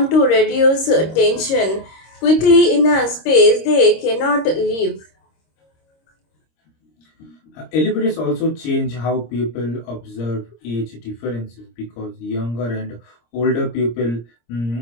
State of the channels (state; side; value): late; right; 26 ms